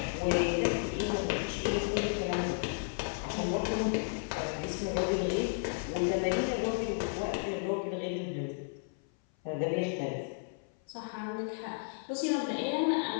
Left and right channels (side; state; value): right; silent; 56 dB below the other